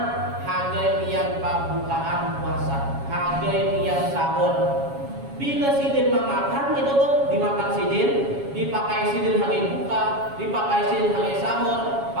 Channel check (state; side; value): late; left; 7.2 ms